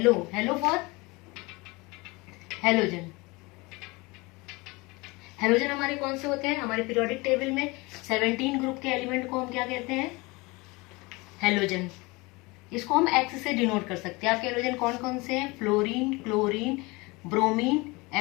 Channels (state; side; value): quieter; right; 24.5 dB